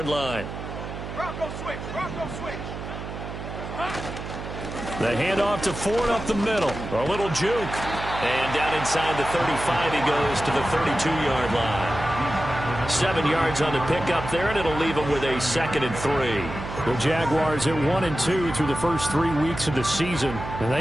line. Rocco switch, Rocco switch. The handoff to Ford up the middle. A little juke. And down inside the 35, he goes to the 32-yard line. 7 yards on the pickup there, and it'll leave him with a 2nd and 3. The Jaguars at 1-2 through the first 3 weeks of the season. And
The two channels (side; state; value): right; noise; hum, 8 dB below the sound